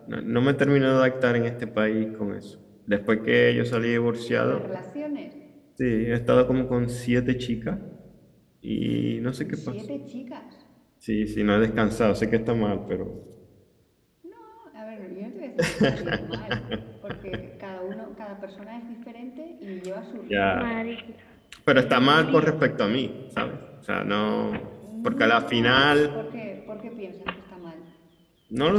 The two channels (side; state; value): both; identical; correlation 1.00